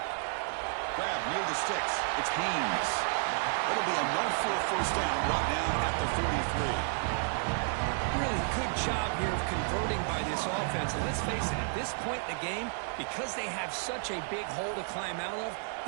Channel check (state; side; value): silent; left; 57 dB below the other